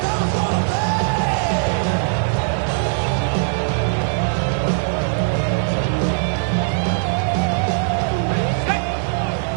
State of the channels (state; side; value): silent; left; digital silence